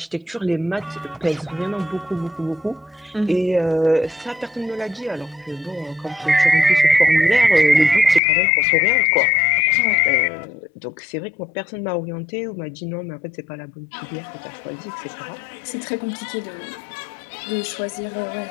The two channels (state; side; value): drops out; right; at 8.2 s